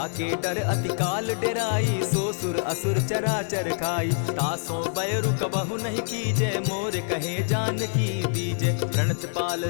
डर अति काल डेराई, सो सुर असुर चराचर खाई। तासो बैरु कबहु नहीं कीजे, मोर कहे जानकी दीजे। प्रणत पाल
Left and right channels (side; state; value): right; silent; digital silence